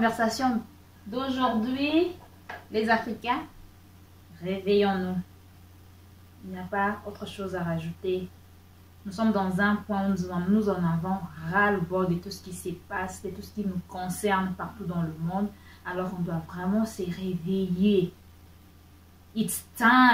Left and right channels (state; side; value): identical; both; correlation 1.00